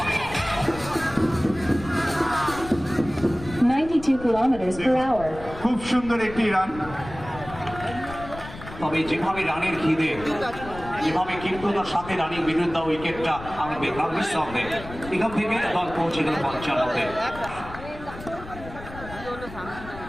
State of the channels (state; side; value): noise; left; rumble, 14 dB below the sound